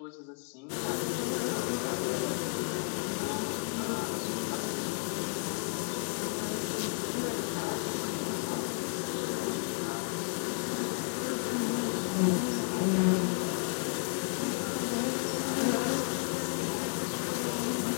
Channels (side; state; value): right; quieter; 37.7 dB